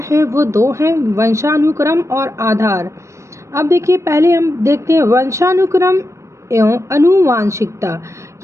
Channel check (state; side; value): late; left; 0.14 ms